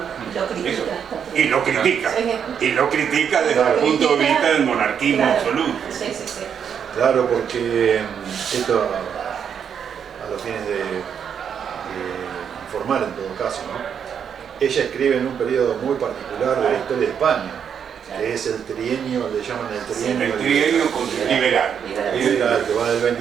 Y lo critica. Y lo critica. Sí. Y lo critica desde el punto de vista del monarquismo Claro. absoluto. Sí. Claro, porque esto a los fines de informar en todo caso, ¿no? Ella escribe en un periodo muy particular de la historia de España, que es el trienio, le llaman el trienio, El trienio liberal. liberal, que va del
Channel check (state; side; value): quieter; left; 7.7 dB